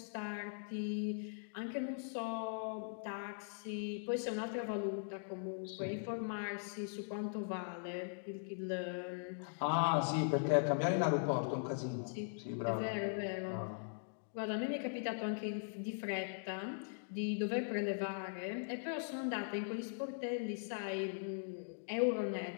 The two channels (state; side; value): silent; right; digital silence